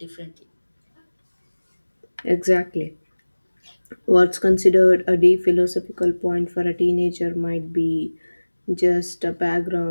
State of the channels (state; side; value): inverted; both; correlation -1.00